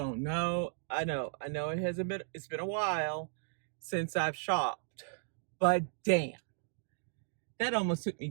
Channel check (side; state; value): left; silent; digital silence